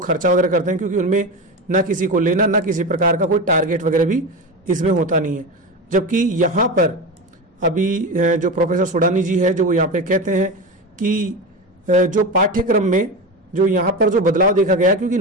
वगैरह करते हैं, क्योंकि उनमें ना किसी को लेना ना किसी प्रकार का कोई टारगेट वगैरह भी इसमें होता नहीं है। जबकि यहाँ पर अभी जो प्रोफेसर सुडानी जी है जो यहाँ पे कहते हैं कि जो पाठ्यक्रम में जो यहाँ पर जो बदलाव देखा गया, क्योंकि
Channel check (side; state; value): both; normal; correlation 0.22